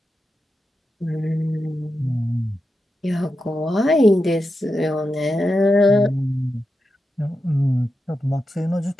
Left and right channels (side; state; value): both; normal; correlation 0.89